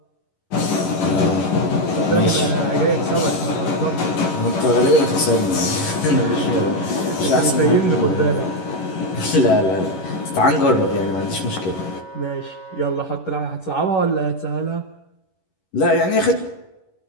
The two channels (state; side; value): late; right; 11 ms